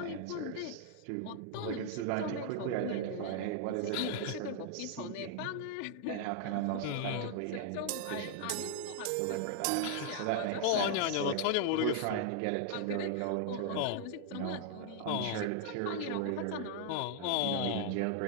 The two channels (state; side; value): different; both; correlation -0.01